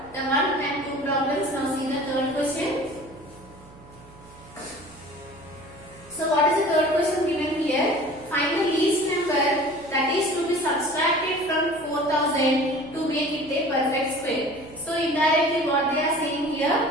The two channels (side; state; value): right; noise; hum, 22 dB below the sound